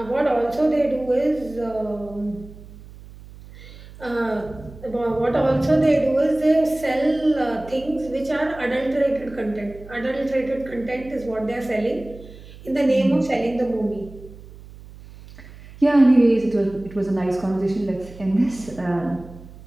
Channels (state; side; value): noise; right; hum, 18 dB below the sound